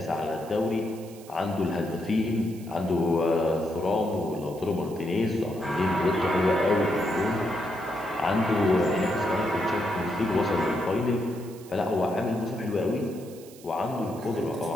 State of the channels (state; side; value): noise; right; hiss, 21 dB below the sound